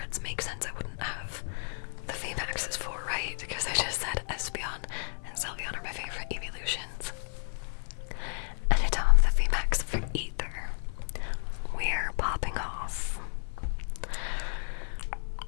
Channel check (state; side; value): silent; right; 56 dB below the other